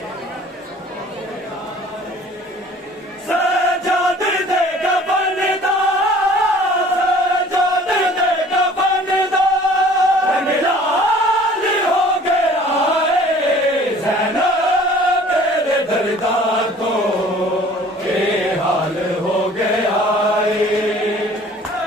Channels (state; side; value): normal; both; correlation 0.50